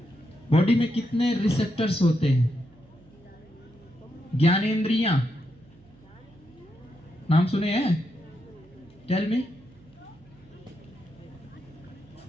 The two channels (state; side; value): noise; right; hum, 26 dB below the sound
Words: बॉडी में कितने रिसेप्टर्स होते हैं? ज्ञानेंद्रियां नाम सुने हैं? Tell me.